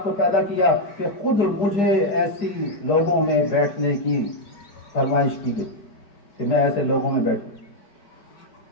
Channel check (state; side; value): late; right; 4.9 ms